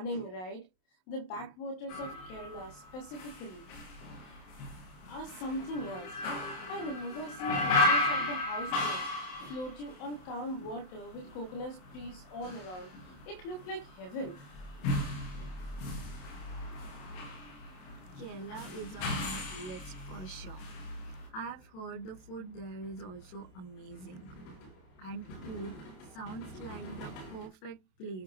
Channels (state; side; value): late; right; 27 ms